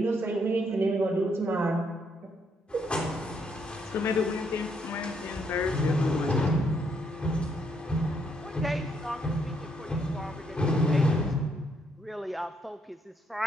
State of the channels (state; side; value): normal; both; correlation 0.73